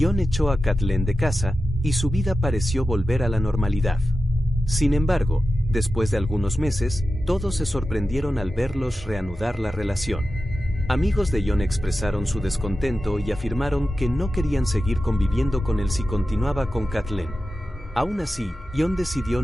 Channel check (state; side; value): normal; both; correlation 0.93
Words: echó a Kathleen de casa, y su vida pareció volver a la normalidad. Sin embargo, después de algunos meses, todos se sorprendieron al verlos reanudar la relación. Amigos de John expresaron su descontento y afirmaron que no querían seguir conviviendo con él si continuaba con Kathleen. Aún así, John decidió